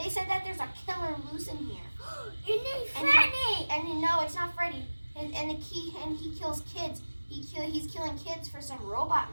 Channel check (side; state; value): both; inverted; correlation -1.00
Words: said that there's a killer loose in here. Your name's Freddy. And no, it's not Freddy. And he kills kids. He's killing kids for some robot